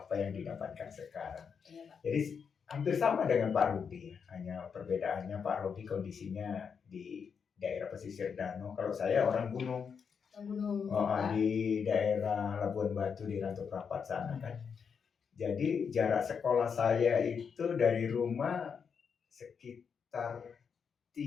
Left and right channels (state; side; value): quieter; right; 6.4 dB